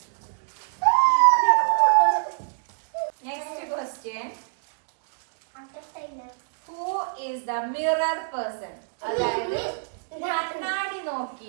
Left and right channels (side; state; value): left; silent; digital silence